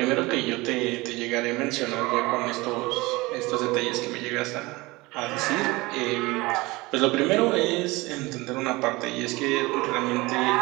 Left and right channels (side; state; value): left; quieter; 22.2 dB